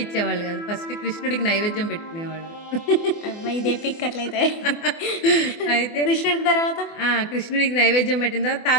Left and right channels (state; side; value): late; right; 24 ms